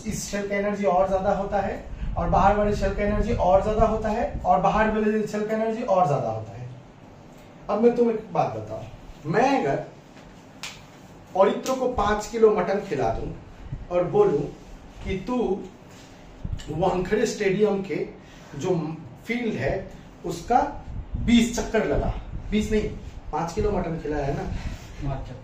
शेल का एनर्जी और ज्यादा होता है, और बाहर वाले शेल का एनर्जी और ज्यादा होता है, और बाहर वाले शेल का एनर्जी और ज्यादा होता है। अब मैं तुम्हें एक बात बताऊं, मैं अगर औरित्रो को 5 किलो मटन खिला दूं और बोलूं कि तू वानखेड़े स्टेडियम के जो फील्ड है उसका 20 चक्कर लगा, 20 नहीं 5 किलो मटन खिलाया है ना,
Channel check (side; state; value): both; identical; correlation 1.00